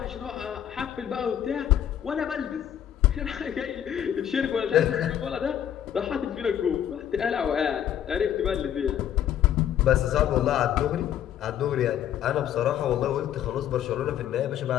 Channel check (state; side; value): quieter; right; 10.3 dB